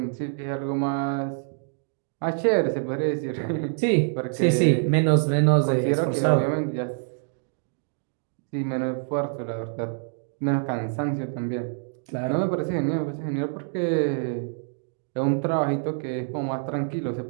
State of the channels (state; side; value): silent; left; digital silence